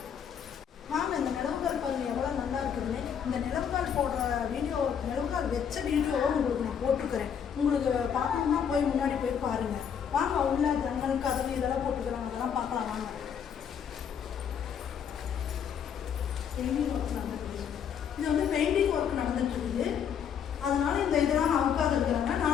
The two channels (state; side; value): quieter; right; 7.9 dB